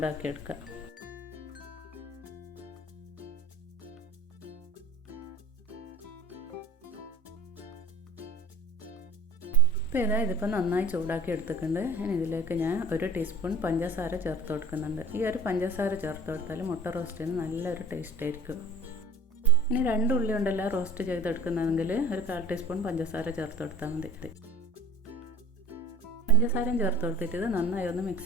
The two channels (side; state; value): both; normal; correlation 0.42